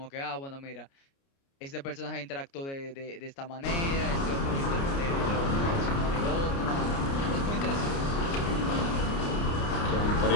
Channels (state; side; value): late; right; 29 ms